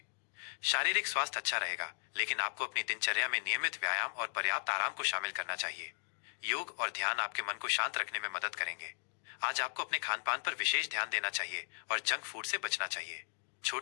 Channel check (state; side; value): silent; right; digital silence